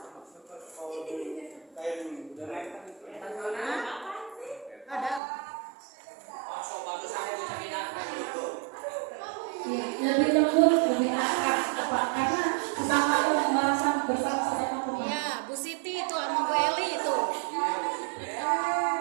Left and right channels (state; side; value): drops out; left; at 5.2 s